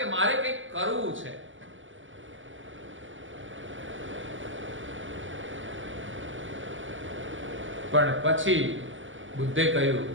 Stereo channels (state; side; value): late; left; 0.56 ms